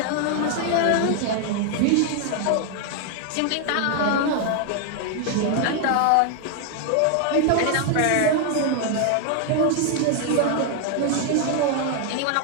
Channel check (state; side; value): different; both; correlation 0.00